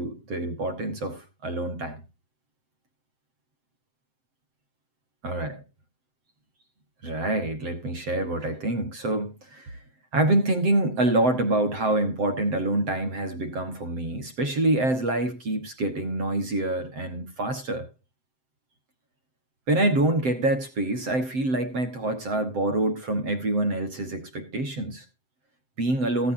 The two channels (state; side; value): late; left; 7.8 ms